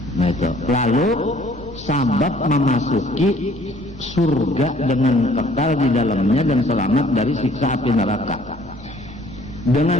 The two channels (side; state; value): right; noise; hum, 21 dB below the sound